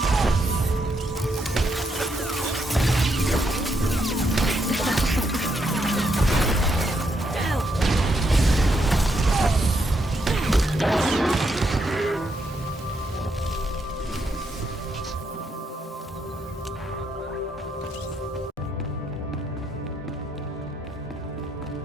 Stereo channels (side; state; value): both; normal; correlation 0.78